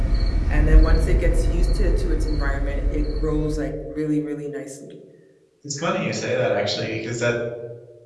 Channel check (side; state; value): both; identical; correlation 1.00